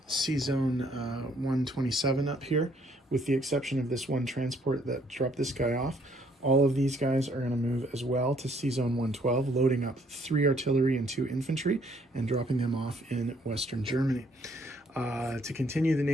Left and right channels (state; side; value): normal; both; correlation 0.66